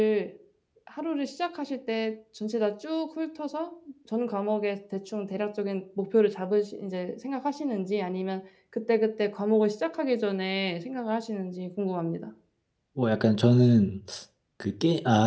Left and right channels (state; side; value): identical; both; correlation 1.00